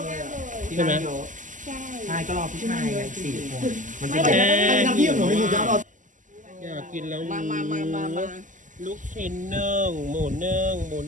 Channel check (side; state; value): left; late; 0.37 ms